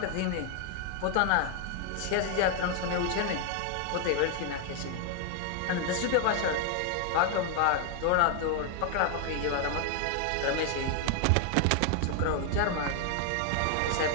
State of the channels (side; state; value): both; different; correlation 0.00